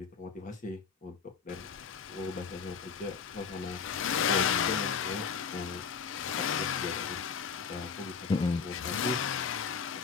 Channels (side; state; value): right; quieter; 6.1 dB